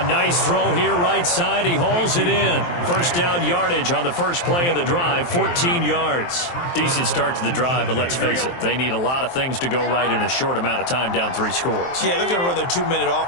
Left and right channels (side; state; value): right; late; 23 ms